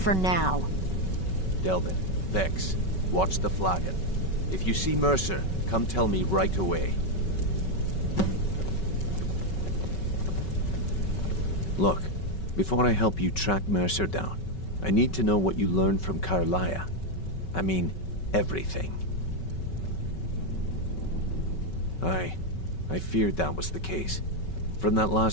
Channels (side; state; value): right; late; 5.3 ms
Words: now. Delvin, Vex, watch the flagon. If you see Mercer, come tell me right away. Look, before I help you track Mercer down, I need to know what you learned from Carlia. I mean, everything. I feared that was the case. From that